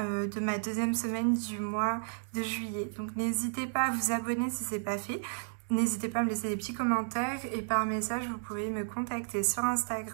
ma deuxième semaine du mois de juillet. Donc n'hésitez pas à vous abonner si ce n'est pas fait. N'hésitez pas à me laisser des petits commentaires et par message vous pouvez me contacter sur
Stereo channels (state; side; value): silent; left; digital silence